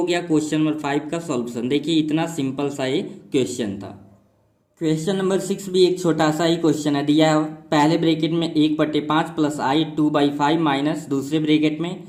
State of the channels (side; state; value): both; identical; correlation 1.00